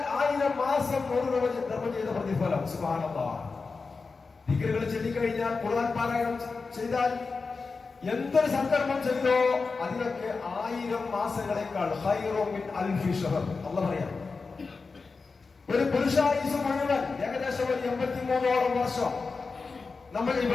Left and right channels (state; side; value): quieter; right; 4.4 dB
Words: 1000 മാസം 100 രൂപ ധർമ്മം ചെയ്ത പ്രതിഫലം. സുബ്ഹാനല്ലാഹ്. ദിക്റുകൾ ചൊല്ലിക്കഴിഞ്ഞാൽ, ഖുർആൻ പാരായണം ചെയ്താൽ, എന്തൊരു സൽക്കർമ്മം ചെയ്തോ അതിനൊക്കെ 1000 മാസങ്ങളെക്കാൾ ഖൈറും മിൻ അൽഫി ശഹർ. അല്ലാഹ് പറയാം. ഒരു പുരുഷായുസ് മുഴുവൻ ഏകദേശം 83ഓളം വർഷം നമ്മൾ